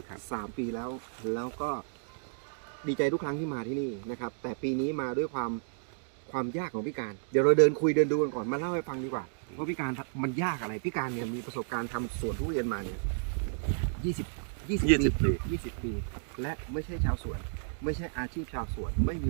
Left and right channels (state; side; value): silent; left; digital silence